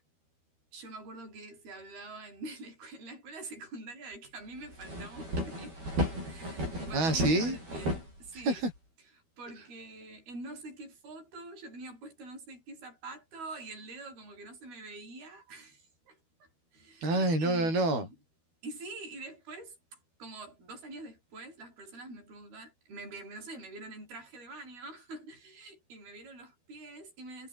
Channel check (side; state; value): left; late; 12 ms